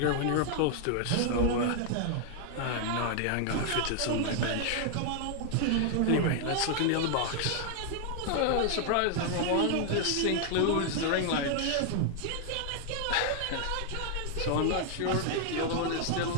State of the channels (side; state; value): both; different; correlation 0.00